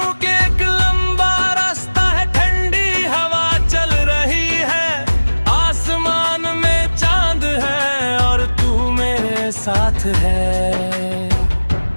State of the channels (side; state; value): both; inverted; correlation -1.00